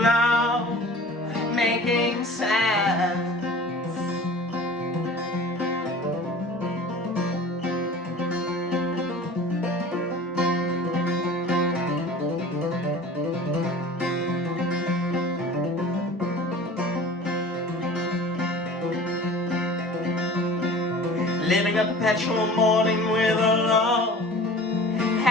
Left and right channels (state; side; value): normal; both; correlation 0.42